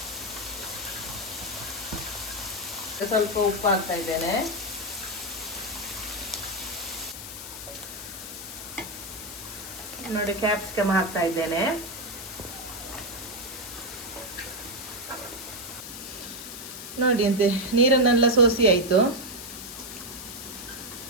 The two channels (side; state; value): left; noise; hiss, 10 dB below the sound